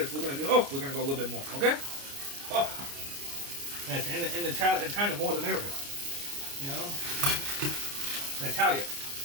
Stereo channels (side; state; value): left; late; 29 ms